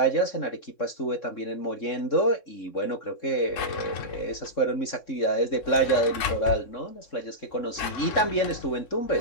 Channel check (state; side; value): late; right; 3.6 ms